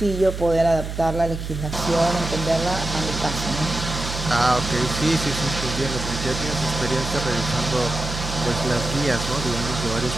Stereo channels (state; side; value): noise; right; hum, 6 dB below the sound